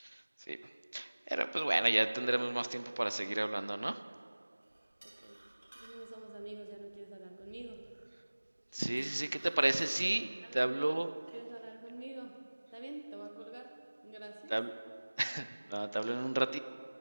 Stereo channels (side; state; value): both; inverted; correlation -1.00